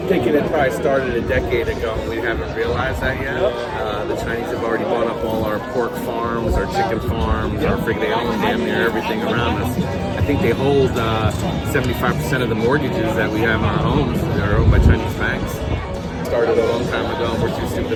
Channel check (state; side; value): identical; both; correlation 1.00